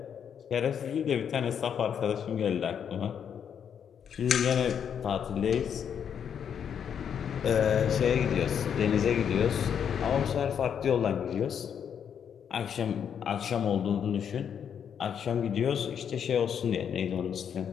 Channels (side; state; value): right; quieter; 8.0 dB